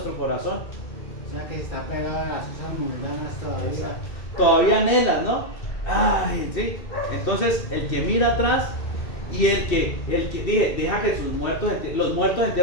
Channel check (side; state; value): right; late; 2.6 ms